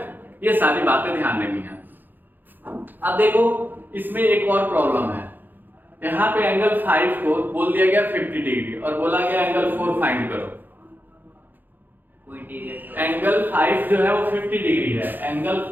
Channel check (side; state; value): left; late; 0.088 ms